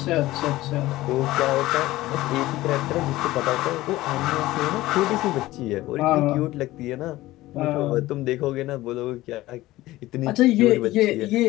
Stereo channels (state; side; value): quieter; right; 17.1 dB